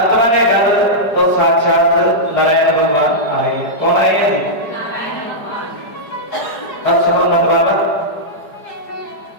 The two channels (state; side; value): late; right; 4.9 ms